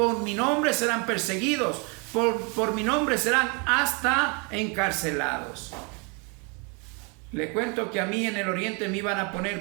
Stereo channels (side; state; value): left; quieter; 33.0 dB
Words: mi nombre serán perseguidos, por mi nombre serán hasta encarcelados. Le cuento que a mí en el Oriente me iban a